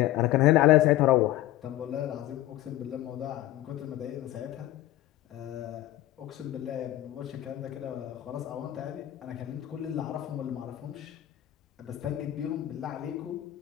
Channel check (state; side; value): quieter; right; 14.7 dB